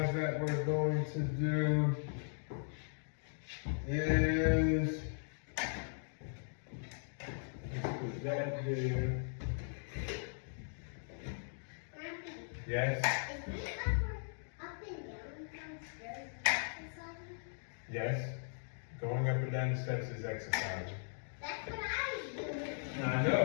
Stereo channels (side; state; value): right; silent; digital silence